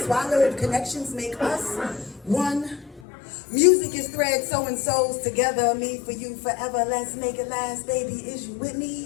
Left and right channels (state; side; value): drops out; right; at 3.0 s